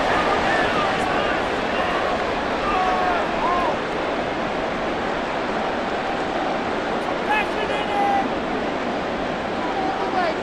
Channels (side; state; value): both; identical; correlation 1.00